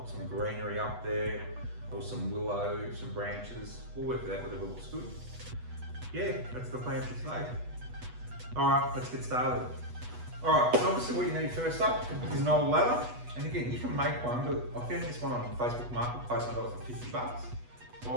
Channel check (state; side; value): late; left; 8.2 ms